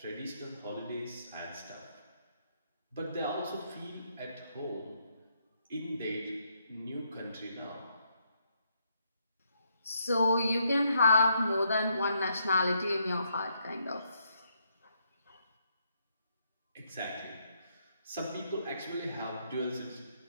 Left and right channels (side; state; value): both; inverted; correlation -0.75